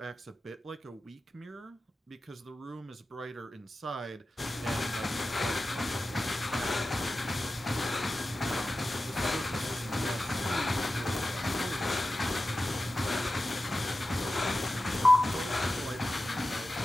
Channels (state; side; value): normal; both; correlation 0.93